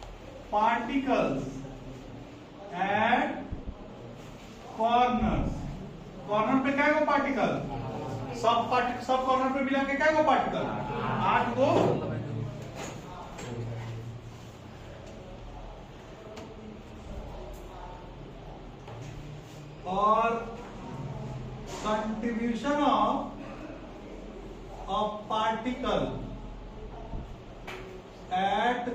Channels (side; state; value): both; identical; correlation 1.00